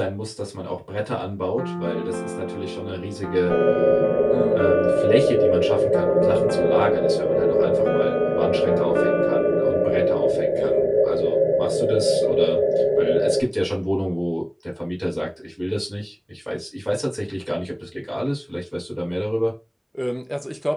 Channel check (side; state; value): both; identical; correlation 1.00